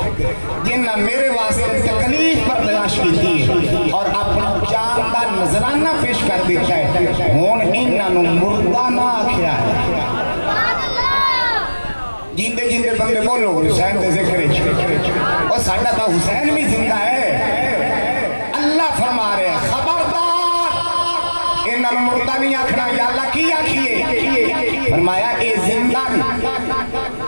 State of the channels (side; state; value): both; inverted; correlation -1.00